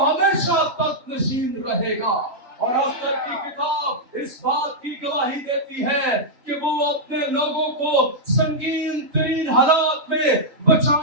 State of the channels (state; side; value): late; left; 3.9 ms